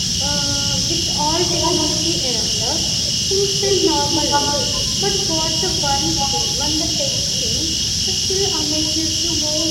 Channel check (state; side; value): identical; both; correlation 1.00